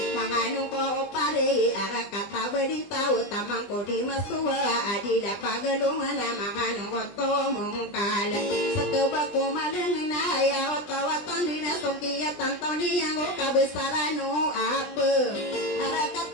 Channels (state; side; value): late; right; 20 ms